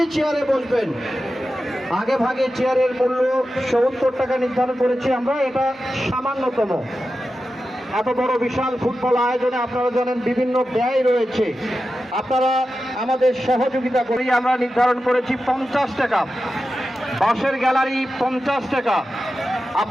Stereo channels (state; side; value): normal; both; correlation 0.92